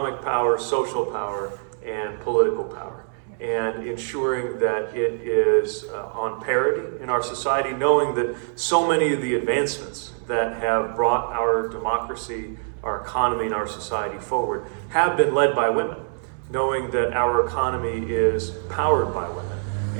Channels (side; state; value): left; silent; digital silence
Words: power, social power, and political power. And ensuring that it is on parity in our society, knowing that so many of the advancements that have brought our democracy, our economy, and our society forward have been led by women. Knowing that our economy is powered by women,